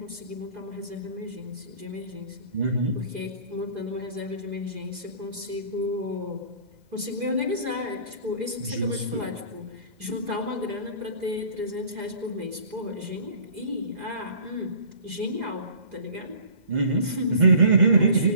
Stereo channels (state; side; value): late; left; 2.0 ms